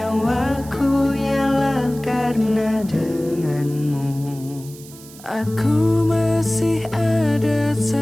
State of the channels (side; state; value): right; noise; hiss, 19 dB below the sound